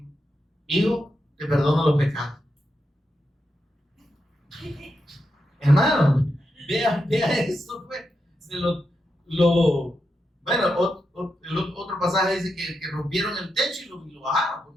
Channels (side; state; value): both; normal; correlation 0.86